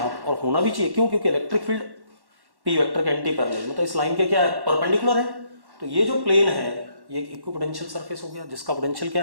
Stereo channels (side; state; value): left; late; 1.1 ms